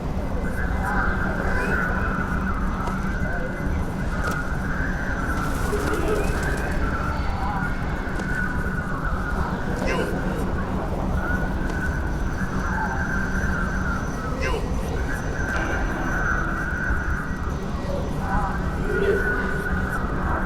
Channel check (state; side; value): identical; both; correlation 1.00